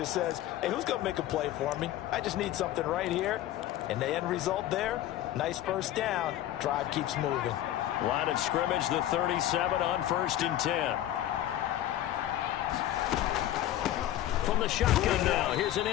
says, hey, who's going to make a play for me? I just need something right here. And the end result there, nice first down. Drive keeps moving. Line of scrimmage, the 37 on 1st and 10. From the shotgun now, here's an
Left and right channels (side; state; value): right; quieter; 13.0 dB